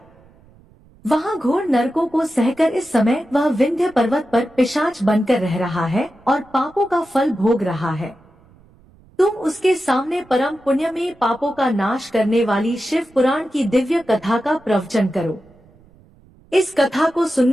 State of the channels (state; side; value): noise; right; rumble, 28 dB below the sound